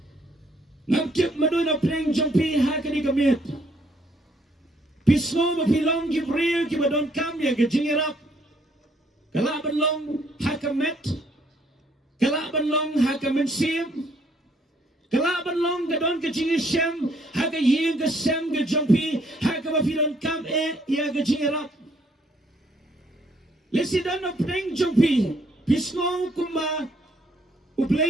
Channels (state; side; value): normal; both; correlation 0.67